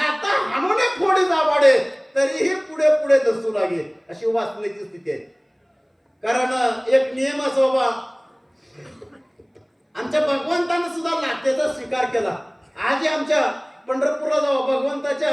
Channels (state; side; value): identical; both; correlation 1.00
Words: हाणूने फोडी दाबाडे तरीही पुढे पुढे दसू लागे अशी वाचण्याची स्थिती आहे. कारण एक नियम असो बाबा. आमच्या भगवंतानं सुद्धा लातेचा स्वीकार केला. आज आमच्या पंढरपूरला जाऊ